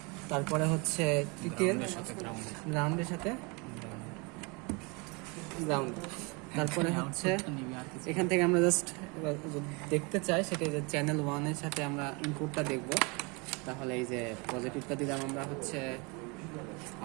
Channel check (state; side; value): quieter; left; 29.5 dB